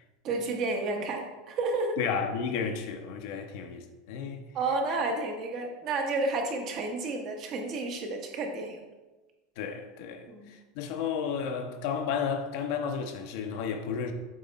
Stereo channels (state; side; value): normal; both; correlation 0.18